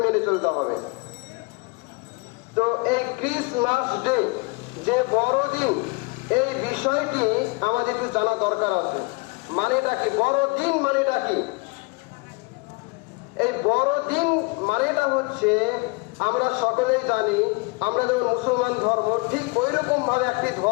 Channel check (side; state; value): right; quieter; 27.9 dB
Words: মেনে চলতে হবে। তো এই ক্রিসমাস ডে যে বড়দিন, এই বিষয়টি আমাদের একটু জানা দরকার আছে। মানেটা কি বড়দিন? মানেটা কি? এই বড়দিন মানেটা হচ্ছে, আমরা সকলেই জানি, আমরা যেমন মুসলমান ধর্ম, ঠিক ওই রকম ভাবে একটি